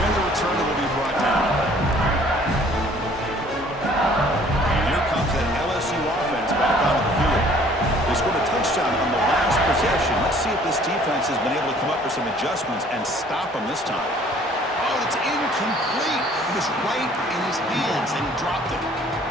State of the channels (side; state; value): both; normal; correlation 0.56